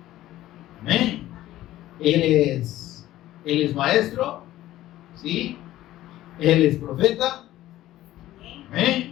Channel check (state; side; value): quieter; right; 14.7 dB